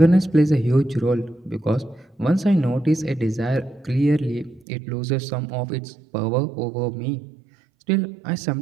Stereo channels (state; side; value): drops out; left; at 4.7 s